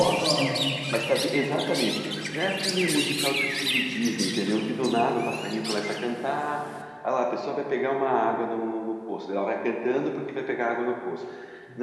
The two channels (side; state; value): both; identical; correlation 1.00